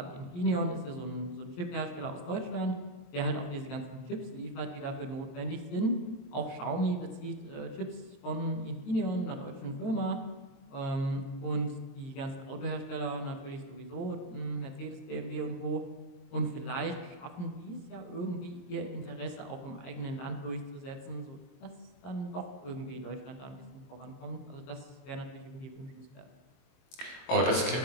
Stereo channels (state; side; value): late; right; 23 ms